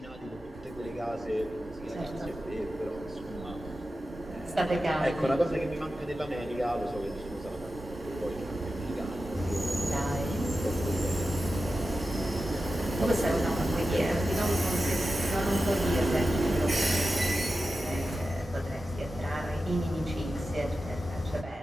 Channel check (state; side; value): normal; both; correlation 0.92